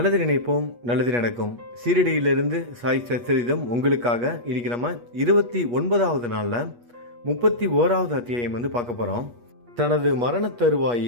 நினைப்போம், நல்லது நடக்கும். சீரடியிலிருந்து சாய் சச்சரிதம் உங்களுக்காக. இன்னைக்கு நம்ம 29வது நாளில் 31வது அத்தியாயம் பார்க்க போகிறோம். தனது மரண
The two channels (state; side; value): late; left; 8.3 ms